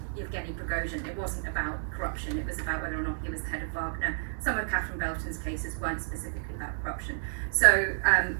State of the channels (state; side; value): silent; left; 57 dB below the other